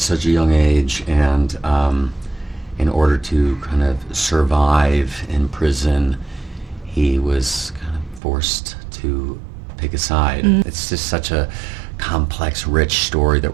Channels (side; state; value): left; drops out; at 8.2 s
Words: a young age, and in order to kind of survive in prison, he was kind of forced to pick a side. It's just such a complex, rich story that